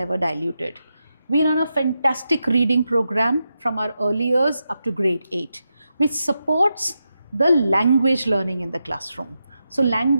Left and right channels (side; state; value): both; inverted; correlation -0.87